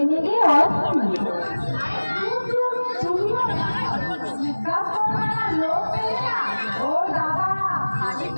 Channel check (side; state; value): both; inverted; correlation -1.00